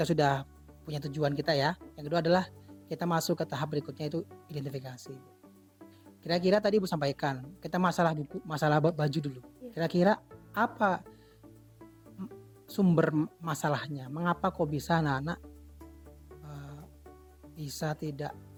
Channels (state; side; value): identical; both; correlation 1.00